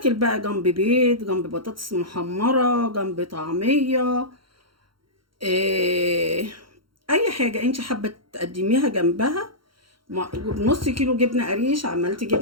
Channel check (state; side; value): late; left; 0.73 ms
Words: بقى جنب بيض، جنب بطاطس محمره، جنب طعميه، اي حاجه انت حابه تقدميها جنبها. بنص كيلو جبنه قريش عملت